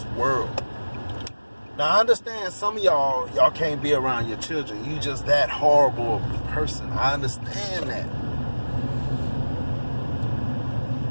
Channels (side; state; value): both; inverted; correlation -1.00